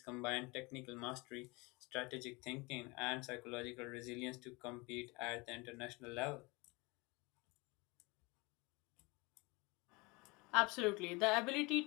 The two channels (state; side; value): quieter; right; 25.9 dB